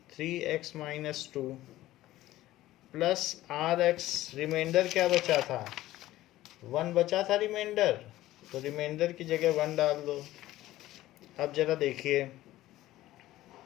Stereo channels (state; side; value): quieter; right; 15.5 dB